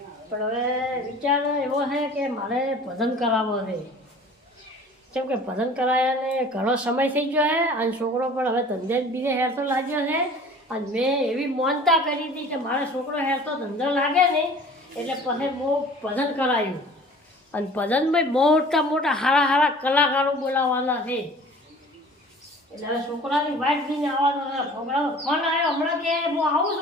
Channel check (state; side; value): normal; both; correlation 0.46